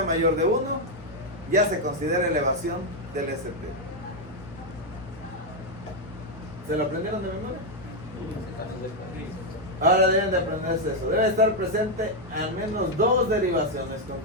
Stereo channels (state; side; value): normal; both; correlation 0.02